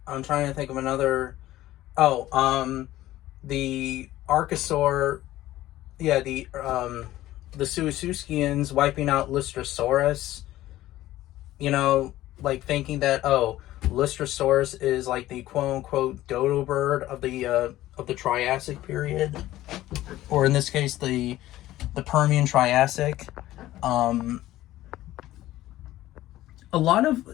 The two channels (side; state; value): right; quieter; 15.2 dB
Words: trying to think of another. Oh, the Archosaur, yeah, the Suisuskians wiping out Lystrosaurus. Like thinking that, oh, Lystrosaurus is like the quote unquote dodo bird of the Triassic period, or in this case the Permian Triassic. Um, a lot of